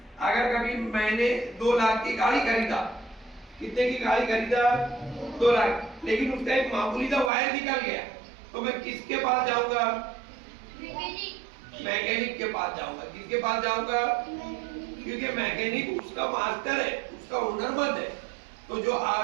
अगर कभी मैंने 2 लाख की गाड़ी खरीदा, कितने की गाड़ी खरीदा? 2 लाख, लेकिन उसका एक मामूली सा वायर निकल गया, तो मैं किसके पास जाऊंगा? मैकेनिक के पास जाऊंगा। किसके पास जाऊंगा? क्योंकि मैकेनिक उसका मास्टर है, उसका हुनरमंद है। तो जो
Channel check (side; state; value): left; drops out; at 7.3 s